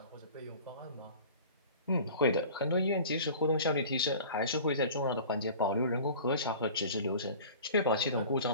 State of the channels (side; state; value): both; inverted; correlation -0.42